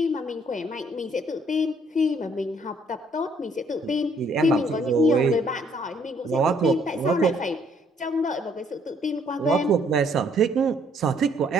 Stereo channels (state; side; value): normal; both; correlation 0.65